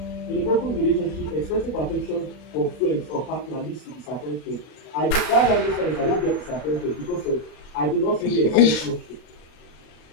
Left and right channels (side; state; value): right; late; 40 ms